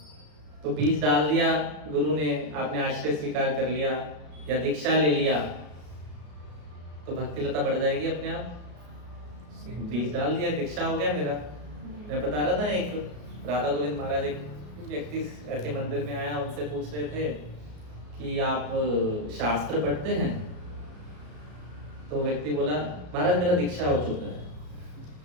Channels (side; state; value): left; late; 34 ms